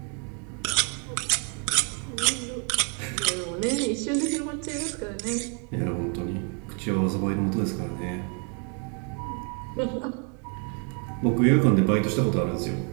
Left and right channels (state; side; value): quieter; left; 38.8 dB